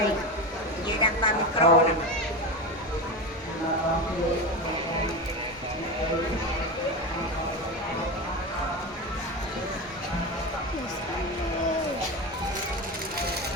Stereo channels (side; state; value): both; normal; correlation 0.21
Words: như đang ba micro nè.